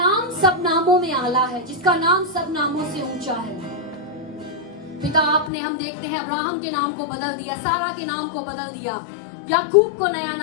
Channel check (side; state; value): right; drops out; at 5.5 s